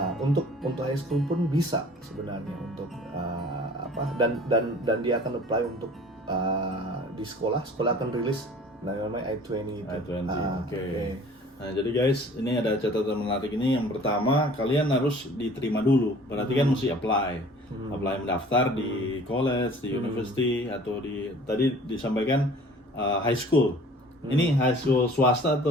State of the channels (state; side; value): normal; both; correlation 0.49